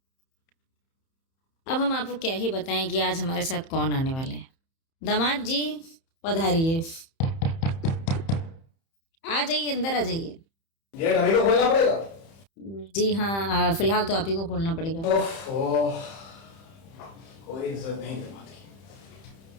अब हम आपको क्या ही बताएं कि आज हमारे साथ कौन आने वाले हैं। दामाद जी पधारिए, आ जाइए, अंदर आ जाइए। गेट हमें को खोलना पड़ेगा? जी हाँ, फिलहाल तो आप ही को खोलना पड़ेगा। ओह, कोई इज्जत नहीं है बात की।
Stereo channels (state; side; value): late; right; 30 ms